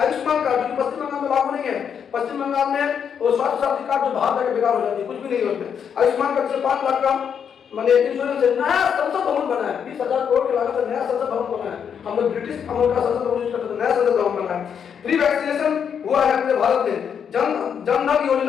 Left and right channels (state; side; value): quieter; right; 7.6 dB